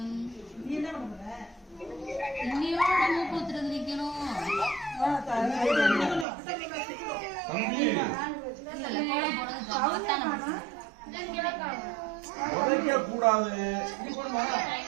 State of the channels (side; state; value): left; drops out; at 6.2 s